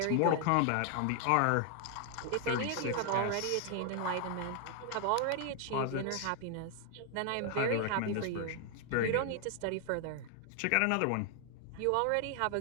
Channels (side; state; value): both; different; correlation 0.00